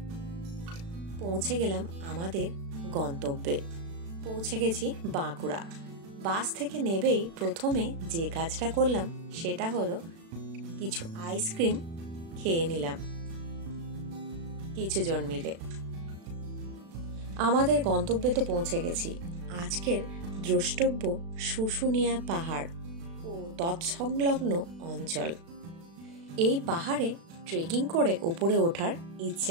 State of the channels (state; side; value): late; left; 36 ms